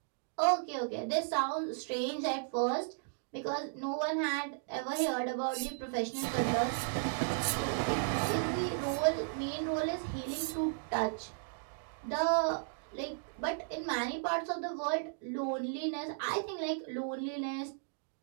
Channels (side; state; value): left; silent; digital silence